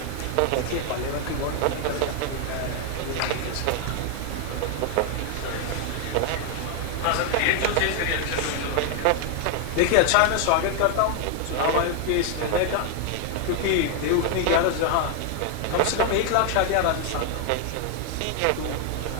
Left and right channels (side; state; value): both; different; correlation 0.00